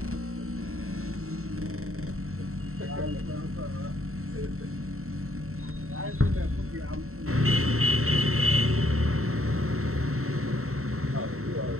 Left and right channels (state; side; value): late; left; 0.63 ms